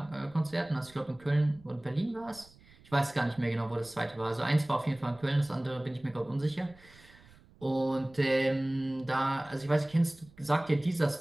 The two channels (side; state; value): right; noise; rumble, 25 dB below the sound